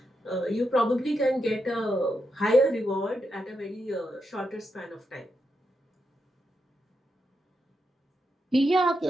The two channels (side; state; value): both; normal; correlation 0.84